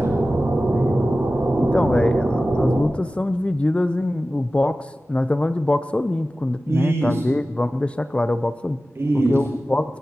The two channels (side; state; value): both; normal; correlation 0.95